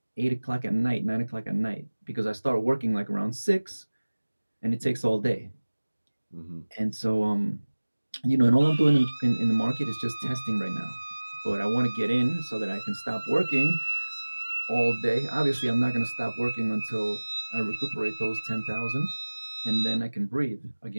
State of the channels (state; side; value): inverted; both; correlation -1.00